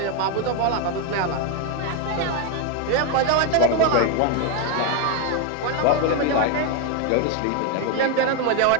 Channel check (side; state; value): both; different; correlation 0.02